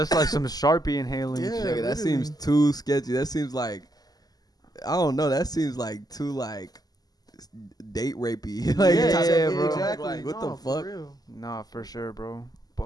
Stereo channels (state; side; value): late; right; 0.19 ms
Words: like some Sharpie inhaling. Yeah, shit. That seems too sketchy. That seems like I don't know. That seems like too like date rapey. Like, yeah, bro. Exactly. Like, what the fuck? Nah, for sure, bro.